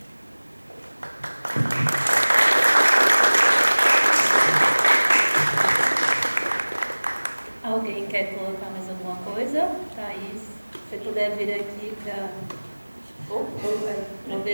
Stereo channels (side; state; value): both; inverted; correlation -1.00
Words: Alguém quer colocar mais alguma coisa? Thaís, se puder vir aqui para...